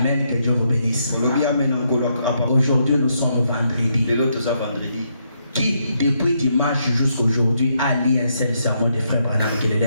que Dieu vous bénisse. Aujourd'hui, nous sommes vendredi. Qui, depuis dimanche jusqu'à aujourd'hui, a lu un seul sermon de frère Branham qui le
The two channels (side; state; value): both; inverted; correlation -0.77